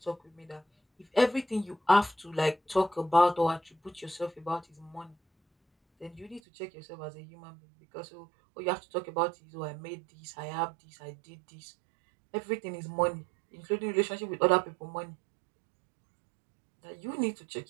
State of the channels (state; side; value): drops out; left; at 6.4 s